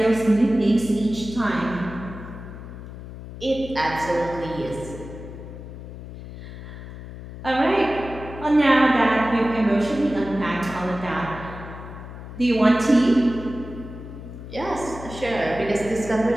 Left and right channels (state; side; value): noise; left; hum, 12 dB below the sound